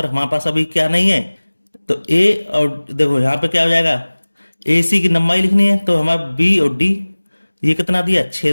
हमारे पास अभी क्या नहीं है। तो ए और देखो यहाँ पे क्या हो जाएगा, ए सी की लंबाई लिखनी है। तो हमारा बी और डी ये कितना दिया 6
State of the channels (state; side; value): inverted; both; correlation -1.00